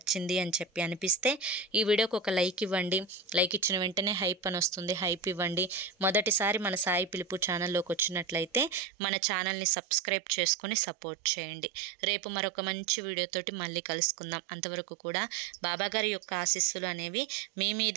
అని చెప్పి అనిపిస్తే ఈ వీడియోకి ఒక లైక్ ఇవ్వండి. లైక్ ఇచ్చిన వెంటనే హైప్ అని వస్తుంది, హైప్ ఇవ్వండి. మొదటిసారి మన సాయి పిలుపు ఛానల్లోకి వచ్చినట్లయితే మన ఛానల్ని సబ్స్క్రైబ్ చేసుకొని సపోర్ట్ చేయండి. రేపు మరొక మంచి వీడియోతోటి మళ్ళీ కలుసుకుందాం. అంతవరకు కూడా బాబాగారి యొక్క ఆశీస్సులు అనేవి మీ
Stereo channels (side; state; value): left; drops out; at 8.8 s